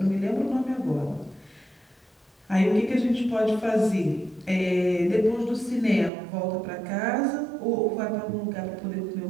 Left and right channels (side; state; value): left; drops out; at 6.1 s